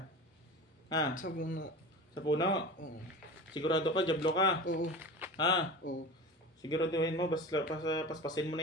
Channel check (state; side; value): normal; both; correlation 0.32